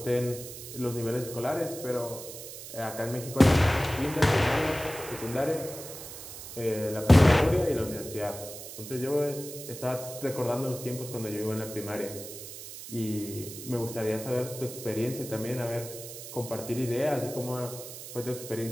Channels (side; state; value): right; noise; hiss, 12 dB below the sound